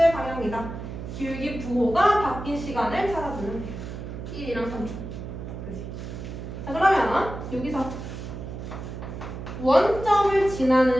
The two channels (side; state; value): right; noise; hum, 8 dB below the sound